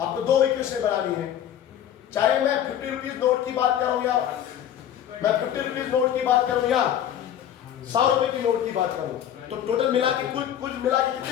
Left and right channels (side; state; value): right; quieter; 10.3 dB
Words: आपको दो इक्वेशन बनानी है, चाहे मैं 50 रुपीज नोट की बात करूं या मैं 50 रुपीज नोट की बात करूं या 100 रुपए की नोट की बात करूं, तो टोटल मिला के कुल मिला के